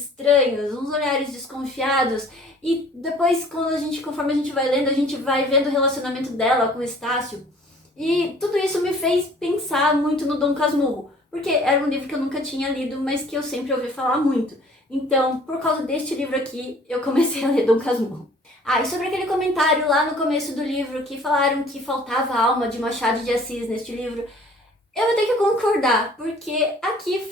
uns olhares desconfiados, e depois, conforme a gente vai lendo, a gente vai vendo o relacionamento dela com o Estácio. E tudo isso me fez pensar muito no Dom Casmurro, porque era um livro que eu nunca tinha lido, mas que eu sempre ouvi falar muito. Então, por causa deste livro aqui, eu comecei a ler Dom Casmurro. Ah, e sobre aquele comentário lá no começo do livro que falaram que faltava a alma de Machado de Assis neste livro, eu vou ter que concordar, porque aqui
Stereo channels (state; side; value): normal; both; correlation 0.53